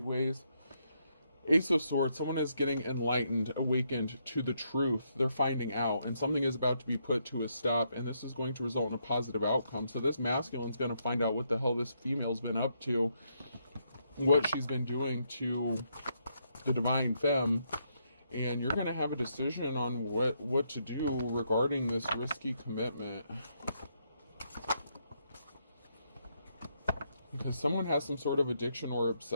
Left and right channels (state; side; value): inverted; both; correlation -0.77